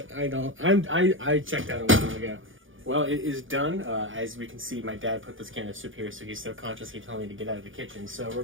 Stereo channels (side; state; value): left; late; 0.58 ms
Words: I don't. I checked out a while ago. Well, it is done. As we can see, my dad put this can of soup here, so he's subconsciously telling me to get out of the kitchen. So we're